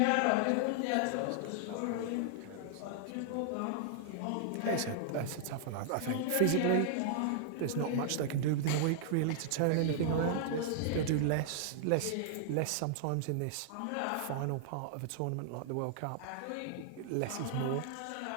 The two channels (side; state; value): both; different; correlation -0.01